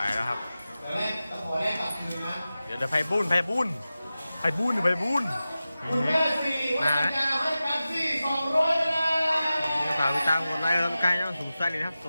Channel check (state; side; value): inverted; both; correlation -0.94